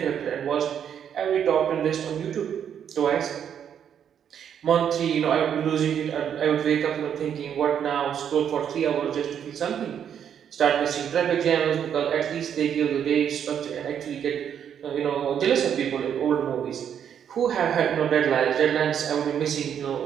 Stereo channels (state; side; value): quieter; left; 8.7 dB